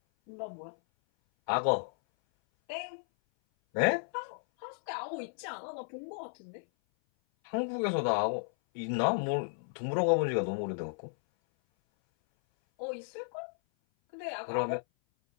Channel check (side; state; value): right; silent; 55 dB below the other